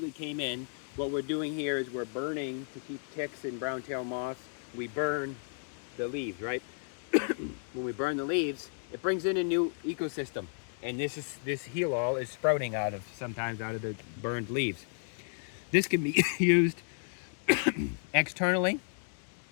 came in. What we're doing here is we're burning to keep ticks and brown-tailed moths. We burn the leaves, right? When we burn the leaves, it brings in a new ecosystem. And this heel all is sprouting sometimes out of the burned leaves. This can be used Externally,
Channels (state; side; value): silent; right; 56 dB below the other